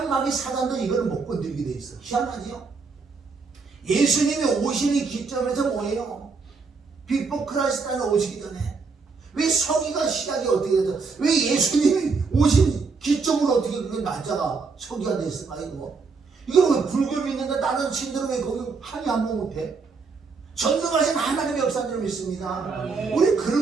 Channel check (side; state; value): left; quieter; 4.7 dB